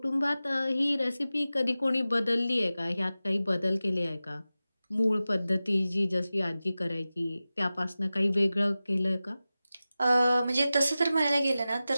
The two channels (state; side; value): inverted; both; correlation -0.95